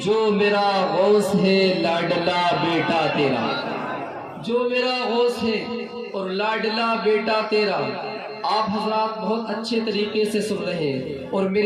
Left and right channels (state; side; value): identical; both; correlation 1.00